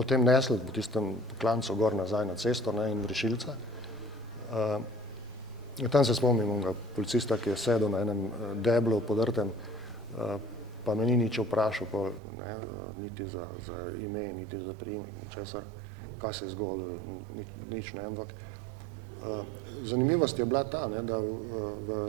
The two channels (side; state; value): left; drops out; at 12.2 s